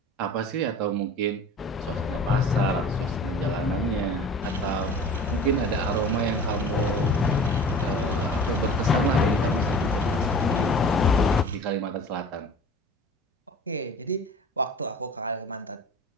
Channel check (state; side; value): normal; both; correlation 0.41